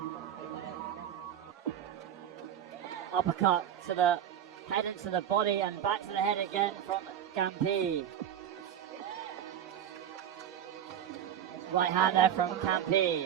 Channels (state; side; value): quieter; left; 9.9 dB